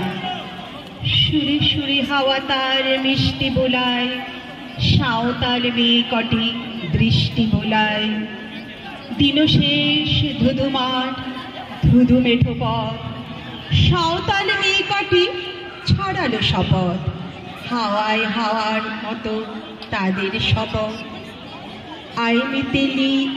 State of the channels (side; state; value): both; identical; correlation 1.00